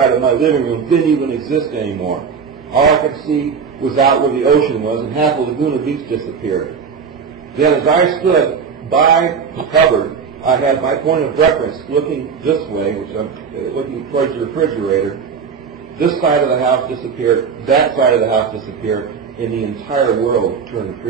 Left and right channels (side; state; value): left; quieter; 6.1 dB